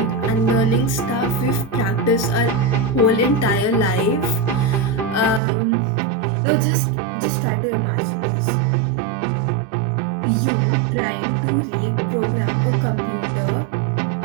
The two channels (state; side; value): drops out; left; at 5.4 s